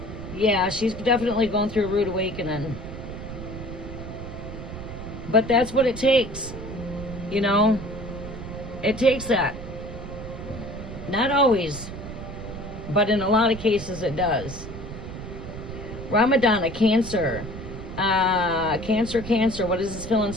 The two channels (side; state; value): right; noise; rumble, 10 dB below the sound